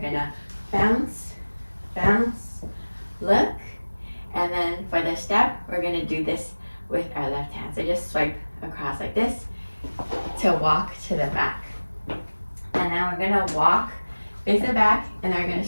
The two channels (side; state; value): both; inverted; correlation -1.00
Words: bounce, bounce, look, and then for the step, we're gonna do this with our left hand. So just swipe across like this to walk to the back. And now we're gonna walk, face the back, and then we're gonna